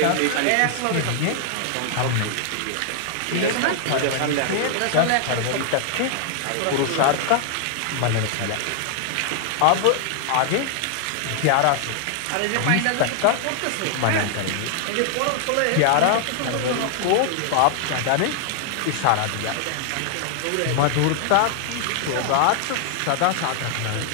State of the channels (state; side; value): different; both; correlation 0.00